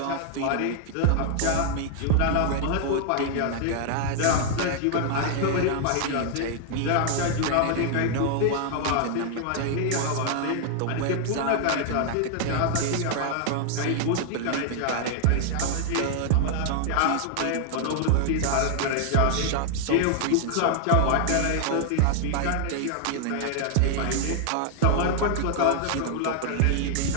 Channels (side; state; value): both; different; correlation 0.00